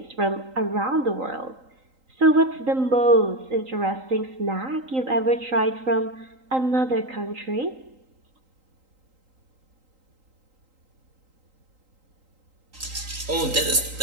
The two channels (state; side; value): late; left; 3.8 ms